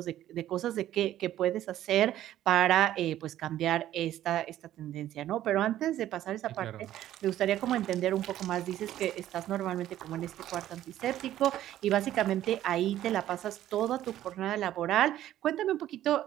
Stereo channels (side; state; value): left; quieter; 12.7 dB